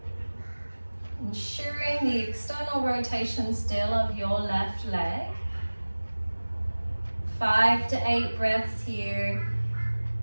ensuring the external rotation still of your left leg. 5 to 8 breaths here.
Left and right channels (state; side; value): inverted; both; correlation -1.00